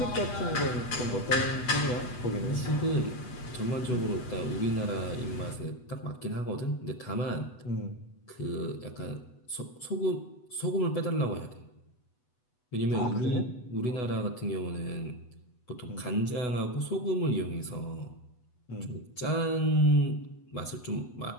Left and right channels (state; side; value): late; right; 8.0 ms